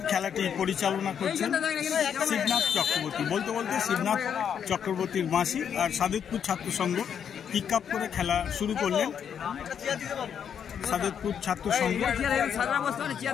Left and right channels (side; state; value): right; quieter; 8.1 dB